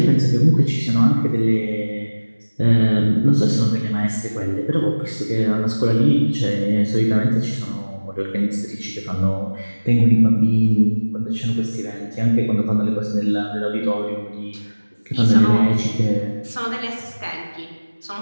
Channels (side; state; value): both; inverted; correlation -1.00